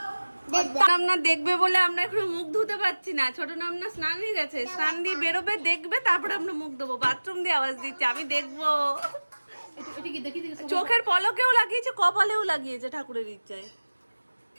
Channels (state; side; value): inverted; both; correlation -1.00